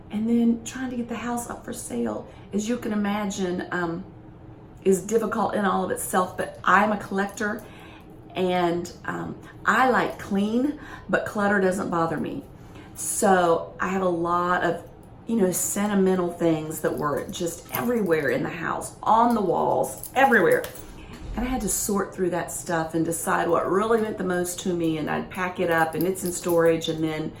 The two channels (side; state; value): both; identical; correlation 1.00